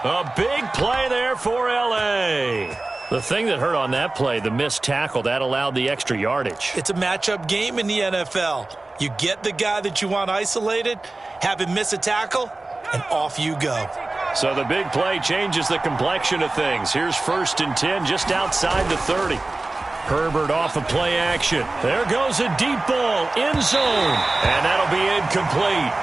A big play there for L.A. The thing that hurt on that play, the missed tackle, that allowed the extra yardage. It's a matchup game in the NFL. You get the guy that you want isolated, have him miss a tackle, and off you go. So the big play changes the complexion of things. Here's 1st and 10 just outside the 30. Herbert off of play action. There goes a deep ball, end zone, and that'll be incomplete.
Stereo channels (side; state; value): left; quieter; 3.1 dB